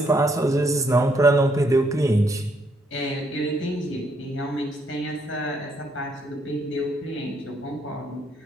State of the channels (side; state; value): both; normal; correlation 0.72